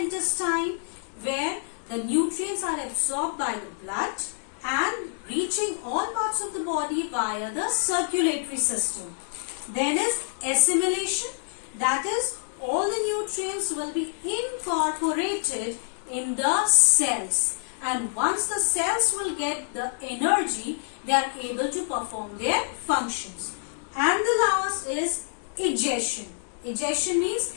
where the nutrients are absorbed by the blood and reaching all parts parts of the body via the circulatory system. Then is assimilation, that is all the nutrients will be incorporated in the cells, and once the cells will get the energy, they are able to perform their functions. And the last is ingestion. Ingestion means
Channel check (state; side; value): silent; right; digital silence